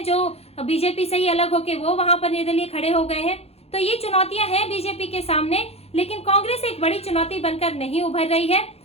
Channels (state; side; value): late; right; 0.29 ms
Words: जो बीजेपी से ही अलग होके वो वहां पर निर्दलीय खड़े हो गए हैं। तो ये चुनौतियां हैं बीजेपी के सामने, लेकिन कांग्रेस एक बड़ी चुनौती बनकर नहीं उभर रही है।